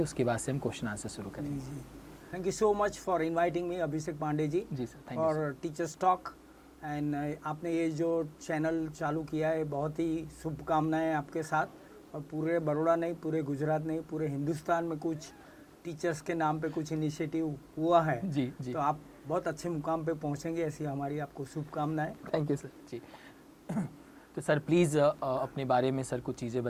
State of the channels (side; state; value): both; identical; correlation 1.00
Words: बाद से हम क्वेश्चन आंसर शुरू करें। जी, thank you so much for inviting me Abhishek Pandey ji for teachers talk. And आपने ये जो चैनल चालू किया है, बहुत ही शुभकामनाएं आपके साथ, और पूरे बड़ौदा नहीं, पूरे गुजरात नहीं, पूरे हिंदुस्तान में कुछ टीचर्स के नाम पे कुछ इनिशिएटिव हुआ है। जी। तो आप बहुत अच्छे मुकाम पे पहुंचेंगे, ऐसी हमारी आपको शुभकामनाएं। थैंक यू सर जी। तो सर प्लीज़ अपने बारे में सर कुछ चीज़ें